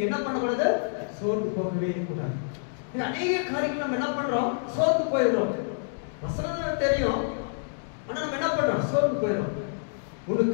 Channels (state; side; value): silent; right; digital silence